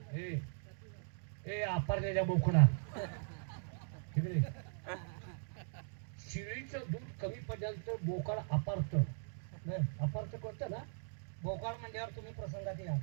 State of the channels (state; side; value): silent; left; digital silence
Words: ए ए आपारलेल्या बोकडा तिकडे शिळीचं दूध कमी पडल्यानंतर बोकाड अपारत. अपारत करतं ना. भोकाळ म्हणल्यावर तुम्ही प्रसंगात या.